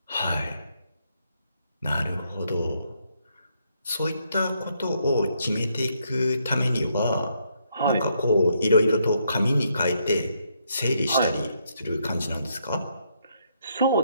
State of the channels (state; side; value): inverted; both; correlation -0.75